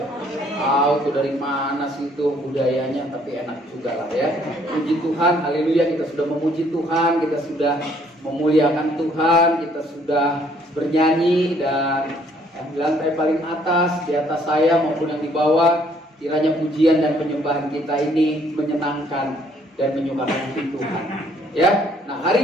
Tahu tuh dari mana sih itu budayanya, tapi enak juga lah ya. Puji Tuhan, haleluya, kita sudah memuji Tuhan, kita sudah memuliakan Tuhan, kita sudah bernyanyi, dan yang di lantai paling atas, di atas saya maupun yang di bawah, kiranya pujian dan penyembahan kita ini menyenangkan dan menyukakan hati Tuhan. Ya, nah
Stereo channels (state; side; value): normal; both; correlation 0.63